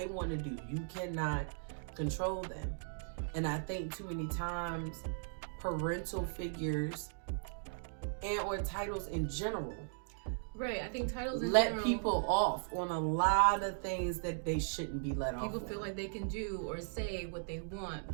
want to do. You cannot control them. And I think too many times parental figures and or titles in general I think titles in let general, people off on a lot of things that they shouldn't be let off on. People feel like they can do or say what they want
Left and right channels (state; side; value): silent; left; digital silence